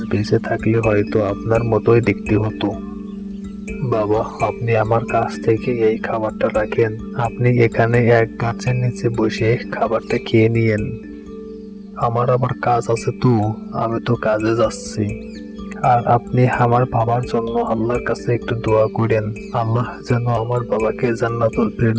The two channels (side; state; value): both; identical; correlation 1.00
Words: বেঁচে থাকলে হয়তো আপনার মতোই দেখতে হতো। বাবা, আপনি আমার কাছ থেকে এই খাবারটা রাখেন। আপনি এখানে এক গাছের নিচে বসে খাবারটা খেয়ে নিয়েন। আমার আবার কাজ আছে তো, আমি তো কাজে যাচ্ছি। আর আপনি আমার বাবার জন্য আল্লাহর কাছে একটু দোয়া করেন, আল্লাহ যেন আমার বাবাকে জান্নাতুল